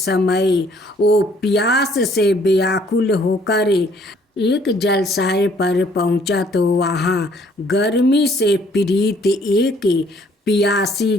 वो प्यास से व्याकुल होकर एक जलाशय पर पहुंचा, तो वहाँ गर्मी से पीड़ित एक प्यासी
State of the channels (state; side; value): normal; both; correlation 0.62